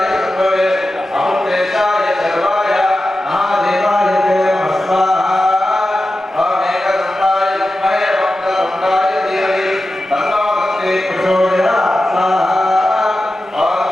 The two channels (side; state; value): both; normal; correlation 0.93